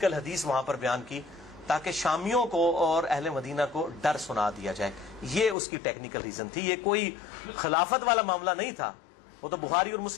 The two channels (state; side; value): drops out; right; at 5.6 s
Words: حدیث وہاں پر بیان کی تاکہ شامیوں کو اور اہل مدینہ کو ڈر سنا دیا جائے۔ یہ اس کی ٹیکنیکل ریزن تھی، یہ کوئی خلافت والا معاملہ نہیں تھا۔ وہ تو بخاری اور